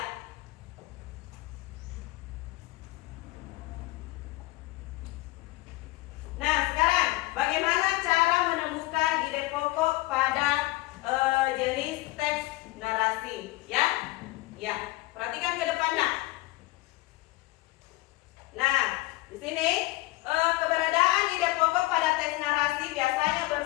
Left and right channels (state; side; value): quieter; right; 20.0 dB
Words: Nah, sekarang bagaimana cara menemukan ide pokok pada jenis teks narasi? Ya, ya. Perhatikan ke depan nak. Nah, di sini keberadaan ide pokok pada teks narasi biasanya